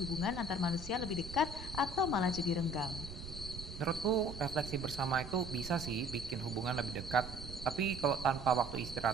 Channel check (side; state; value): right; noise; rumble, 10 dB below the sound